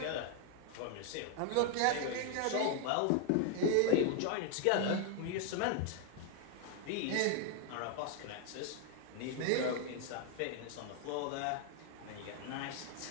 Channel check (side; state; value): both; different; correlation 0.00